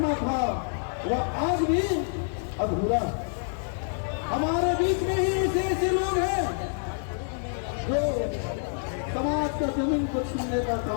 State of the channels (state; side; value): silent; right; digital silence